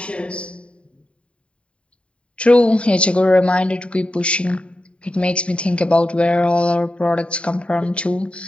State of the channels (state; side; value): late; right; 0.059 ms